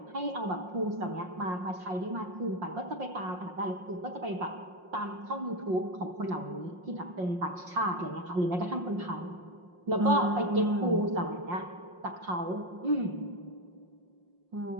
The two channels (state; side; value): late; left; 5.6 ms